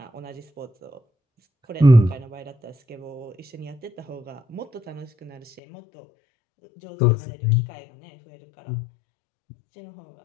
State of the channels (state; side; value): drops out; right; at 5.6 s